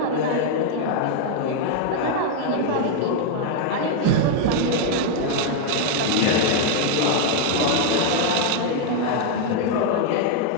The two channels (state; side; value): different; both; correlation 0.00